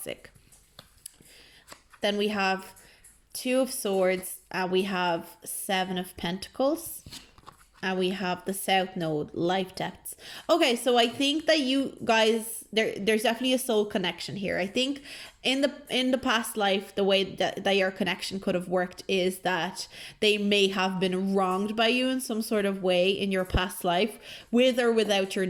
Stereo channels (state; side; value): identical; both; correlation 1.00